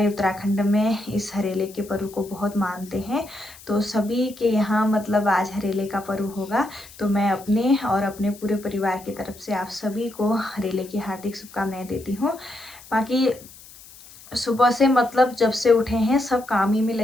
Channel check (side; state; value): left; noise; hiss, 20 dB below the sound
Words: उत्तराखंड में इस हरेले के पर्व को बहुत मानते हैं। तो सभी के यहाँ मतलब आज हरेले का पर्व होगा। तो मैं अपने और अपने पूरे परिवार की तरफ से आप सभी को हरेले की हार्दिक शुभकामनाएं देती हूँ। बाकी सुबह से मतलब जब से उठे हैं सब काम ही में